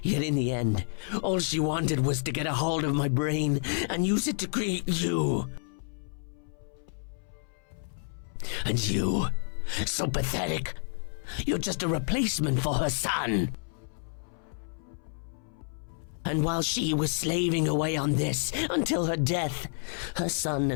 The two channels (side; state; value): right; silent; 58 dB below the other